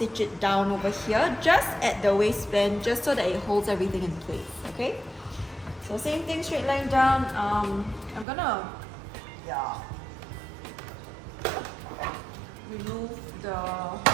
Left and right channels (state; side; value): drops out; left; at 8.2 s